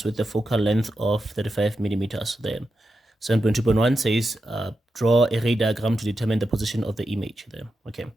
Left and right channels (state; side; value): normal; both; correlation 0.88